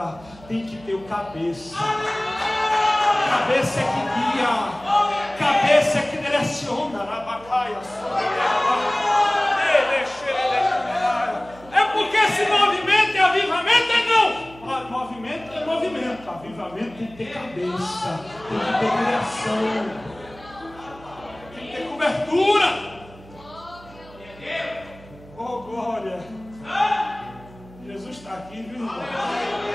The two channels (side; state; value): right; noise; hum, 21 dB below the sound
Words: Tem que ter o cabeça. Cabeça é que guia. Cabeça é que direciona. É porque se movimento é avivamento, é não. Movimento é movimento. Avivamento tem que ter cabeça. Tem que ter direção. Cobertura. Oh, glória. Jesus está aqui, viu, irmão?